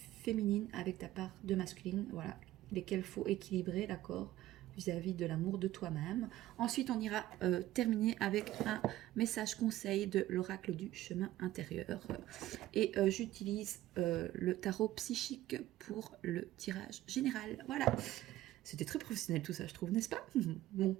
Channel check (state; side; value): quieter; left; 15.0 dB